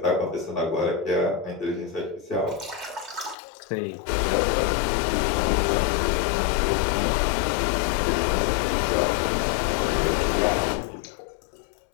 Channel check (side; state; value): right; drops out; at 3.4 s